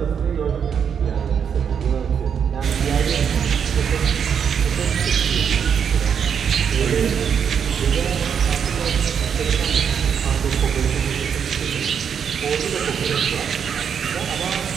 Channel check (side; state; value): left; quieter; 7.5 dB